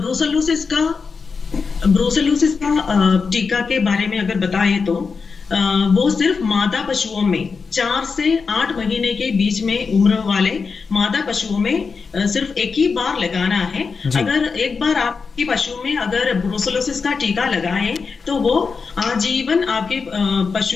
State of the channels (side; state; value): right; quieter; 5.1 dB